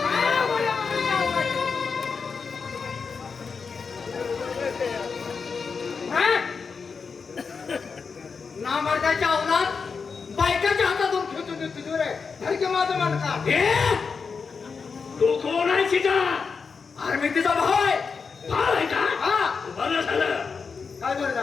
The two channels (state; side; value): quieter; right; 5.3 dB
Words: ना मार्गाच्या अवलाद बायकाच्या हातातून खेचून देतो रे. हलके माझं मार्गा तू कोण आहे सीता? अरे मी तिचा भाऊ आहे. भाव आहे का? हा बरं झालं. काय बरं